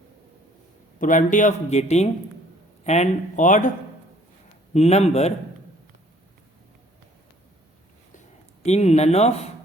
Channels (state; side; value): normal; both; correlation 0.58